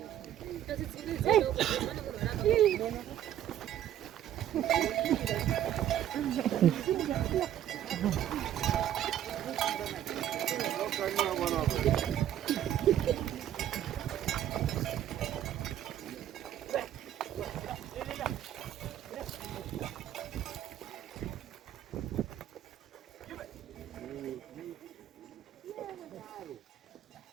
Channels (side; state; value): left; quieter; 11.4 dB